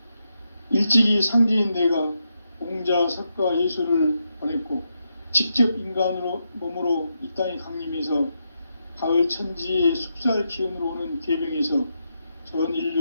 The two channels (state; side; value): inverted; both; correlation -0.84